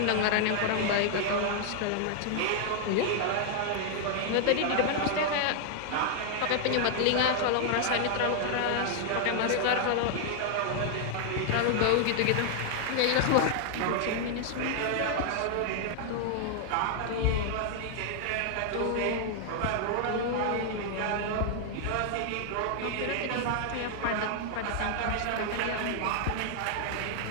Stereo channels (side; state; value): both; different; correlation 0.00